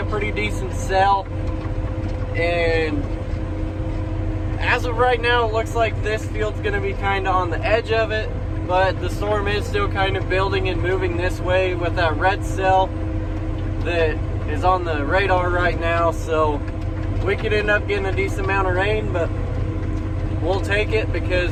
pretty decent sell, and as of right now, it looks like this field's gonna be kind of on the edge of it, but the storm is still kind of building and moving this way with that red cell that is on the radar right now. So we could end up getting a decent amount of rain, but we'll take it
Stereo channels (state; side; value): identical; both; correlation 1.00